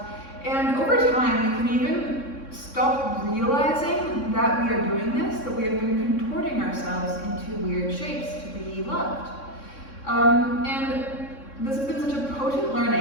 And over time, we can even stop realizing that we are doing this, that we have been contorting ourselves into weird shapes to be loved. And this has been such a potent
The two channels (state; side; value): late; right; 3.6 ms